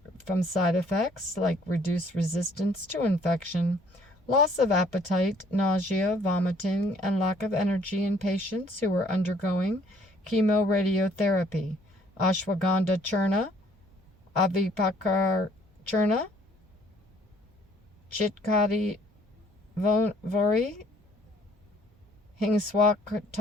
from side effects like reduced resistance to infection, loss of appetite, nausea, vomiting, and lack of energy in patients who are undergoing chemoradiotherapy. Ashwagandha churna, avipakar churna, chitkati vori,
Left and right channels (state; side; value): normal; both; correlation 0.61